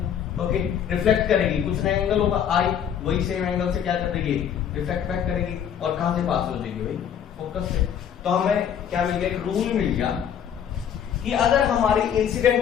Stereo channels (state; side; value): quieter; right; 8.8 dB